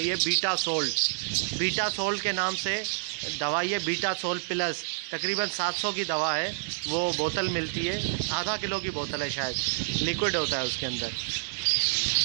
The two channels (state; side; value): silent; left; 59 dB below the other